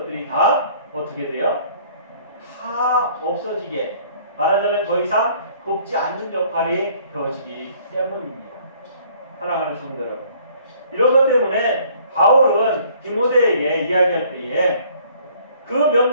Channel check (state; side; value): inverted; both; correlation -0.58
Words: 다 어떻게 돼요? 다 없어지게 말하자면 더 이상 돕지 않는 역할이 되어지기 때문입니다. 사랑하는 성도 여러분, 이런 것 때문에 바울은 디모데에게 이야기할 때에 그